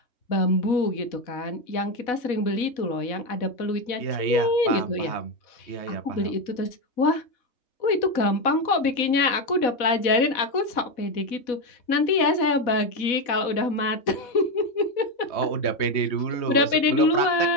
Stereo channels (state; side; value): late; right; 4.1 ms